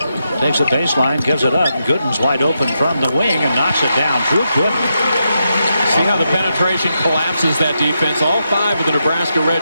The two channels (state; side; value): inverted; both; correlation -0.84